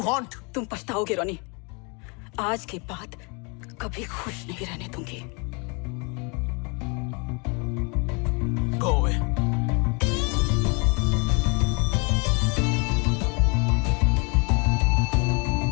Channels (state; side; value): quieter; right; 32.1 dB